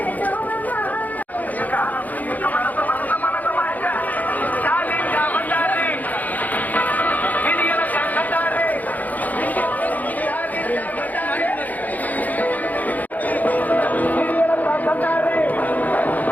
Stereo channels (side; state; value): right; late; 0.080 ms